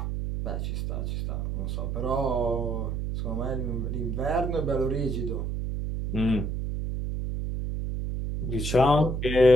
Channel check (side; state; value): right; noise; hum, 2 dB below the sound